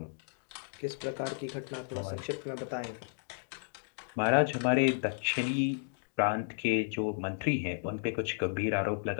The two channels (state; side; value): silent; right; digital silence